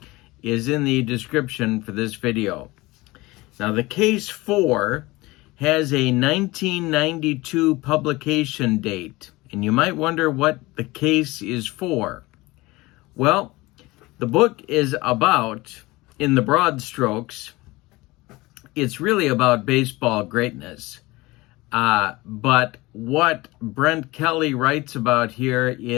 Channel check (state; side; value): quieter; right; 21.2 dB